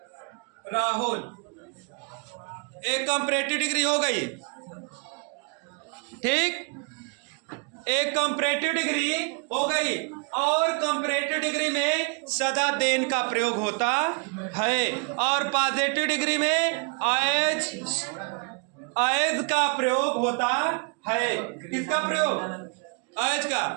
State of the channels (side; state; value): left; quieter; 35.6 dB